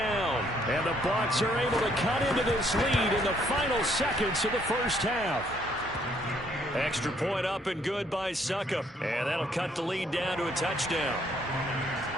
And the Bucs are able to cut into this lead in the final seconds of the first half. Extra point up and good by Succop. And that'll cut the lead down to a touchdown.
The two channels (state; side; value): normal; both; correlation 0.67